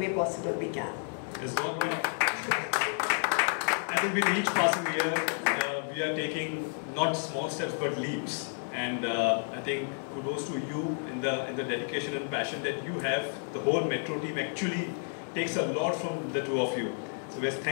possible we can. Yes, I think with each passing year, we are taking not small steps but leaps. And I think kudos to you in the dedication and passion that you have. The whole Metro team actually takes a lot from the 2 of you. So yes,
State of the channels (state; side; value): silent; right; 57 dB below the other